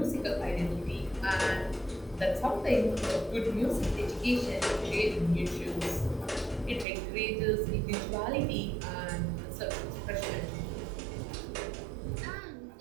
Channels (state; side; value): drops out; left; at 6.9 s